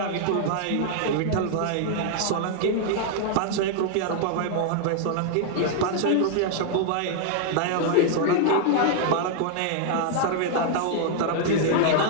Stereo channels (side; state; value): both; different; correlation 0.00